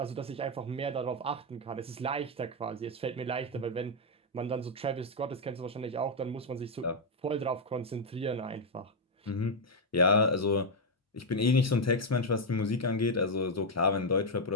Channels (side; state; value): both; normal; correlation 0.01